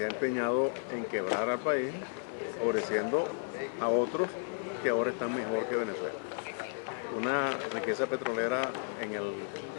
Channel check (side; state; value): right; silent; 56 dB below the other